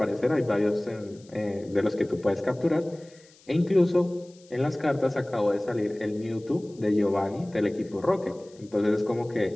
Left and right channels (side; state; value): left; noise; hiss, 28 dB below the sound